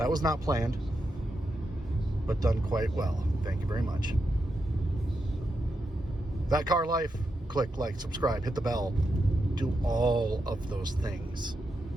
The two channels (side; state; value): both; normal; correlation 0.86